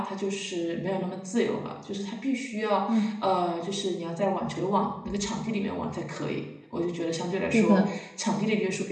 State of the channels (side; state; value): both; identical; correlation 1.00